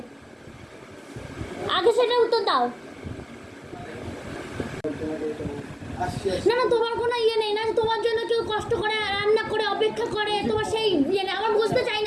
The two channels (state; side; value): identical; both; correlation 1.00